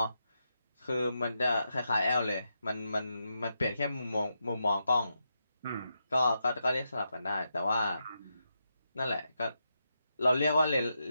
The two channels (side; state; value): both; inverted; correlation -0.84